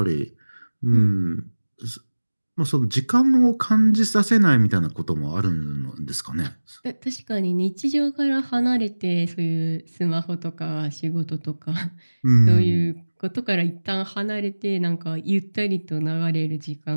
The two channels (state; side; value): inverted; both; correlation -1.00